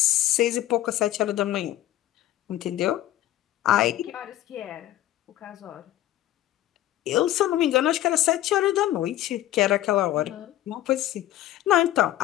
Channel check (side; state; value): right; quieter; 13.8 dB